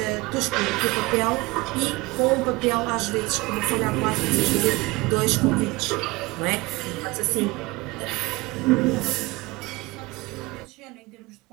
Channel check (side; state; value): left; quieter; 22.8 dB